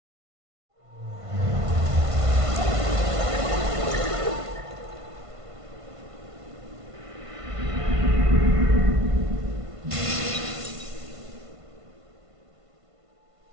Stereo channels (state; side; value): late; left; 1.5 ms